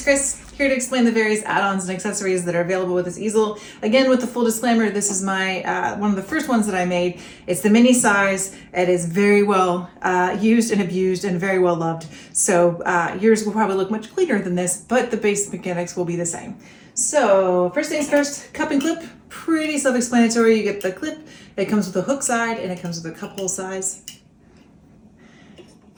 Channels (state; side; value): identical; both; correlation 1.00